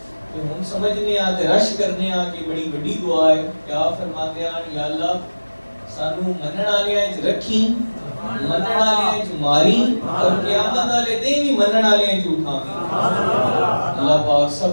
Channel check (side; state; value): both; inverted; correlation -1.00